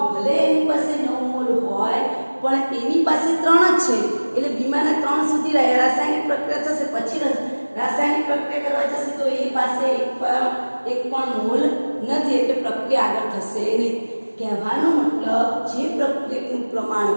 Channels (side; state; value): both; inverted; correlation -1.00